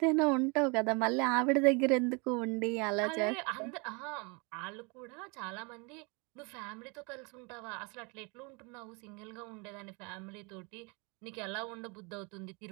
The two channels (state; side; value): quieter; left; 31.0 dB